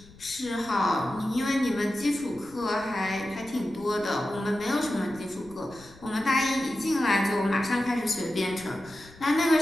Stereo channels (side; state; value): left; noise; rumble, 22 dB below the sound